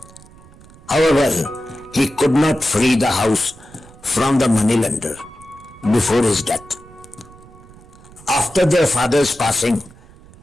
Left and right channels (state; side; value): noise; right; rumble, 23 dB below the sound